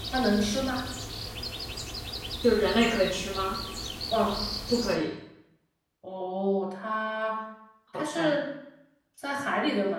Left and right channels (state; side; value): identical; both; correlation 1.00